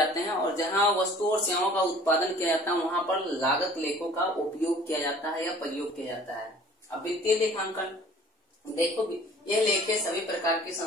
हैं और जहां वस्तुओं और सेवाओं का उत्पादन किया जाता है वहां पर लागत लेखों का उपयोग किया जाता है या प्रयोग किया जाता है। अब वित्तीय लेखांकन, देखो ये लेखे सभी प्रकार की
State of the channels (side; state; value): both; normal; correlation 0.50